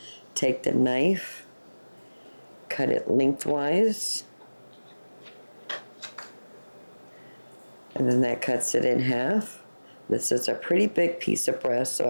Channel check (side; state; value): both; inverted; correlation -1.00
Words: take the knife, cut it lengthwise, and then that cuts it in half. This is a pretty big piece of breast, so